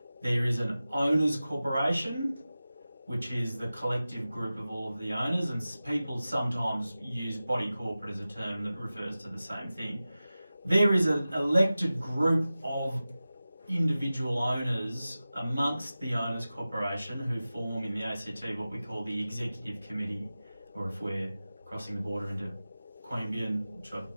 There is an owners corporation, which is the collective group of all of the owners, and people sometimes use body corporate as a term that refers to the same thing. There is an elected group of individual owners amongst the owners corporation who form in the ACT what we call the executive committee, or if we're crossing the border into Queanbeyan, which I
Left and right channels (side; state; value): both; inverted; correlation -0.95